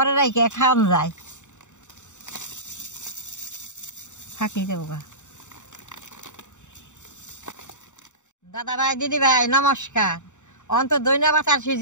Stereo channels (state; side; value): late; right; 0.84 ms